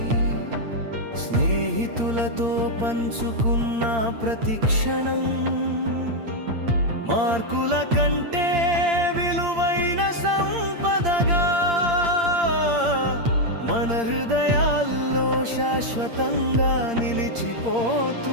స్నేహితులతో పంచుకున్న ప్రతి క్షణం, మార్కుల కంటే విలువైన సంపదగా మన హృదయాల్లో శాశ్వతంగా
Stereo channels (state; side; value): late; left; 8.7 ms